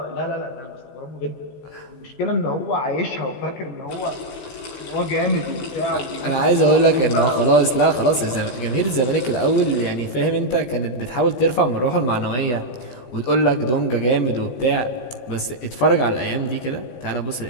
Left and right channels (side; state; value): right; late; 16 ms